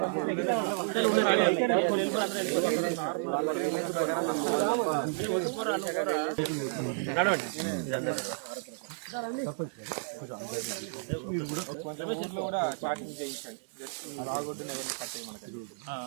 కూడా చాటింగ్ చేయించండి. రాగొద్దున ఎవరిని కట్టే మనకి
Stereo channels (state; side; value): silent; left; digital silence